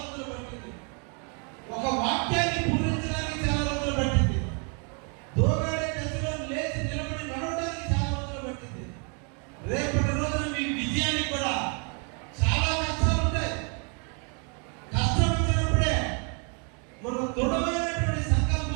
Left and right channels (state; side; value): quieter; left; 37.5 dB